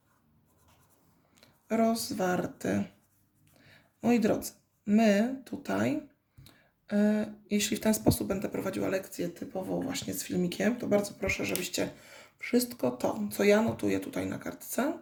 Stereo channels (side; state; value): both; identical; correlation 1.00